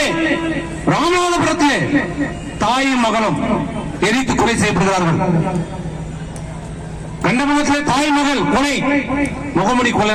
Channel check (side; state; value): both; identical; correlation 1.00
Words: ராமநாதபுரத்திலே தாயும் மகளும் எரித்து கொலை செய்யப்படுகிறார்கள். கண்டமுகத்திலே தாய் மகள் கொலை, முகமூடி